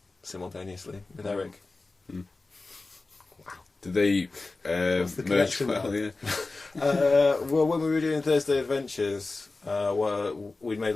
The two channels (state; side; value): quieter; right; 3.5 dB